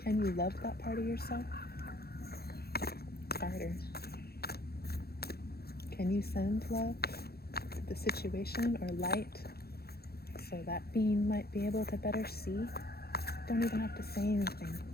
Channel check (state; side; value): late; right; 0.46 ms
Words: Can you love that part of yourself? Harder. Can you send love to the situation or light so that being might be able to better see? Don't even have to say anything.